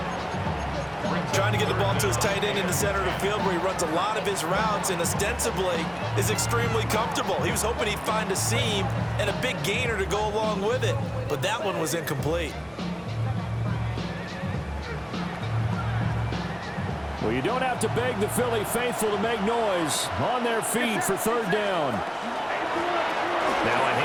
Trying to get the ball to his tight end in the center of the field where he runs a lot of his routes and ostensibly is extremely comfortable. He was hoping he'd find a seam and a big gainer to go along with it, but that one was incomplete. Well, you don't have to beg the Philly faithful to make noise. On their feet for 3rd down. Now a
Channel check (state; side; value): identical; both; correlation 1.00